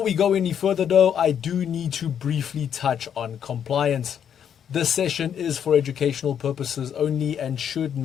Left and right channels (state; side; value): quieter; right; 8.6 dB